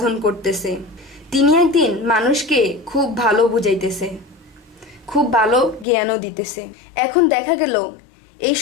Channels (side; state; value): right; drops out; at 5.9 s